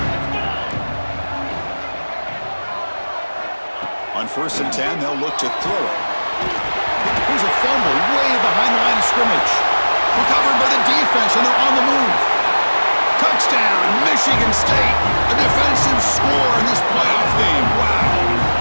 On 1st and 10, they'll look to throw it. Here's a fumble way behind the line of scrimmage. Recovered by the defense, and they're on the move. Touchdown, Michigan State. A defensive score in this playoff game. Wow.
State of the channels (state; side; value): inverted; both; correlation -1.00